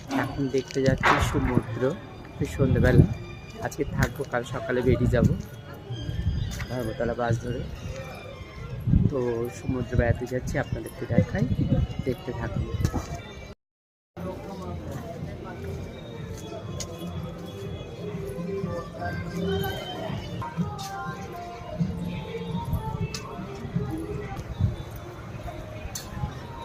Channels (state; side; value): identical; both; correlation 1.00